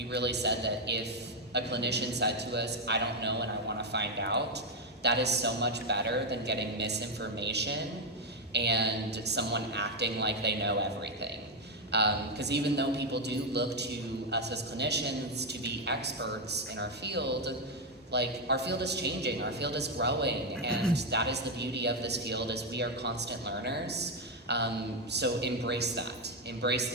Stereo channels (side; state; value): both; normal; correlation 0.05